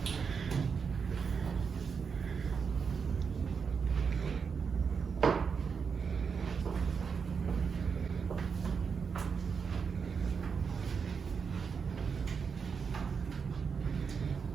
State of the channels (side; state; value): left; quieter; 5.9 dB